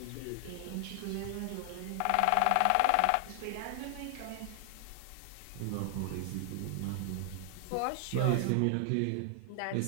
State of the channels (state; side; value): different; both; correlation 0.00